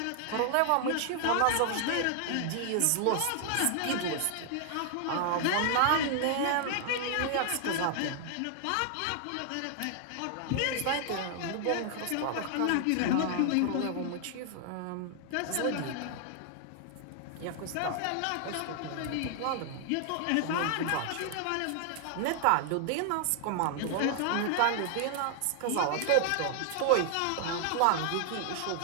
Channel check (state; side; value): different; both; correlation 0.00